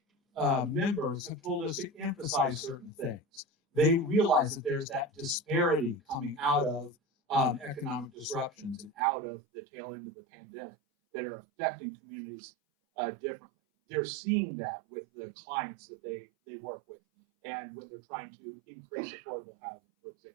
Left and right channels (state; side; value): drops out; left; at 9.0 s